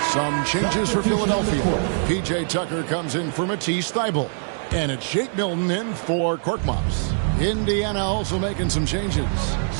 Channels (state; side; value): silent; left; digital silence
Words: Some changes for Philadelphia. P.J. Tucker comes in for Matisse Thybulle. And it's Shake Milton in for Korkmaz. Indiana also making some changes.